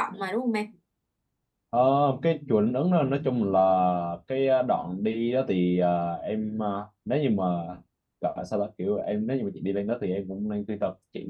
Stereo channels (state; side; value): identical; both; correlation 1.00